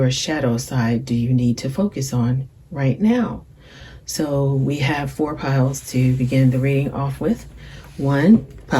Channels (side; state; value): both; identical; correlation 1.00